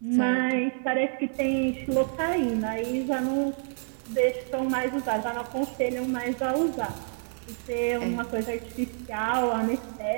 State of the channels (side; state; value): left; silent; digital silence